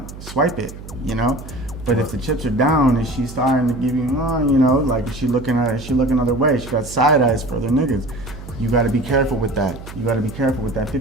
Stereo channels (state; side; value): noise; right; hum, 14 dB below the sound